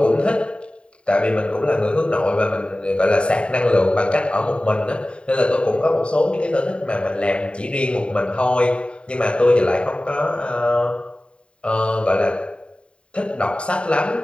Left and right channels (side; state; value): right; late; 0.055 ms